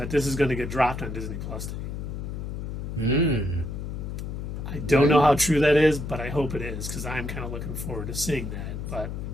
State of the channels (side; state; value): left; noise; hum, 5 dB below the sound